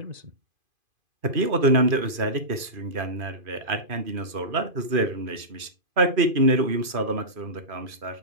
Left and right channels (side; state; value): left; late; 2.5 ms